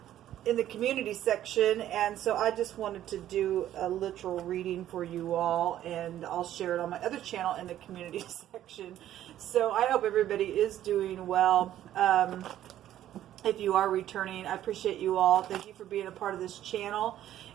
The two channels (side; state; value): left; quieter; 12.2 dB